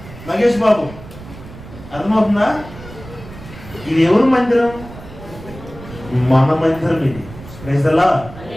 మహేష్ బాబు? అర్థమవుతుందా? ఇది ఎవరు మందిరం? మన మందిరం ఇది. ప్రైజ్లా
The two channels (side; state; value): right; noise; rumble, 16 dB below the sound